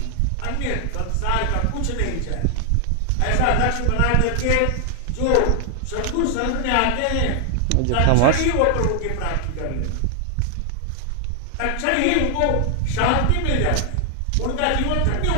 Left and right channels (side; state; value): both; different; correlation 0.00